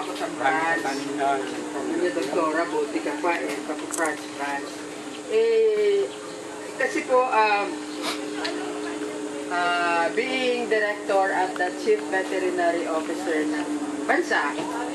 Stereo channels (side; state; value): both; identical; correlation 1.00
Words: sa France. Ano, doktora, buti ka pa eh, France. Kasi po, being director at the chief veterinary officer ng bansa,